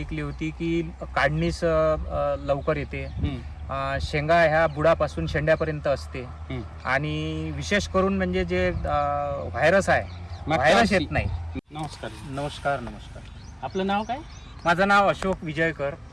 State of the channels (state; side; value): identical; both; correlation 1.00